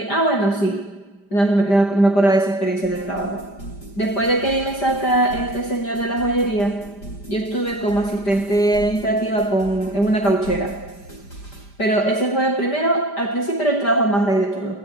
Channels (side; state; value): right; late; 5.0 ms